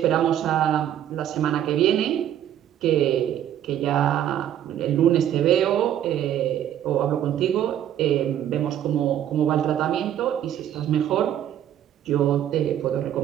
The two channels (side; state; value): left; quieter; 10.8 dB